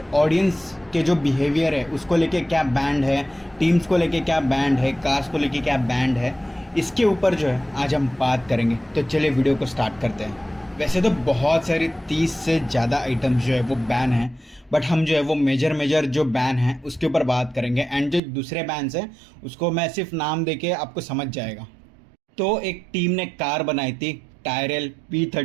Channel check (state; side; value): drops out; left; at 18.2 s